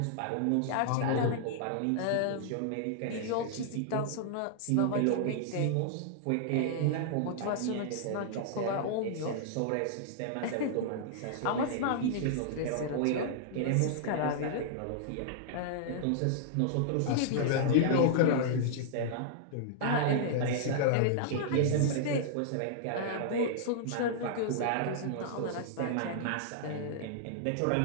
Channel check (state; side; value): different; both; correlation -0.01